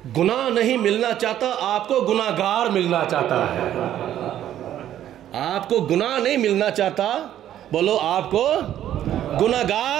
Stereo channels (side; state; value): left; quieter; 11.5 dB